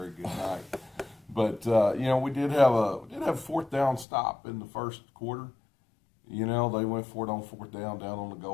good night. But we did have a fourth down stop in the first quarter. They went for it on fourth down on the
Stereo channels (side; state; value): right; drops out; at 4.0 s